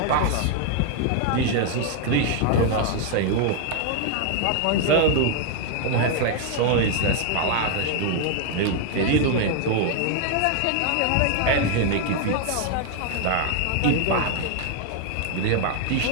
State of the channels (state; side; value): different; both; correlation 0.00